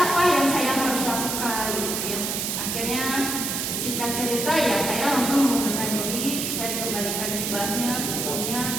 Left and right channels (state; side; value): noise; right; hiss, 2 dB below the sound